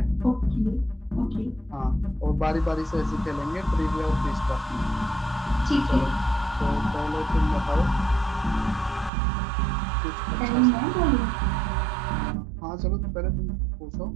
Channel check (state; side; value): drops out; left; at 9.1 s